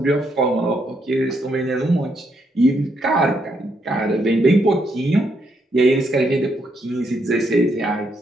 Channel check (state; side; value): normal; both; correlation 0.76